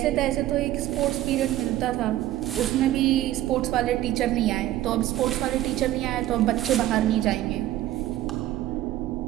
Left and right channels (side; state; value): left; quieter; 14.3 dB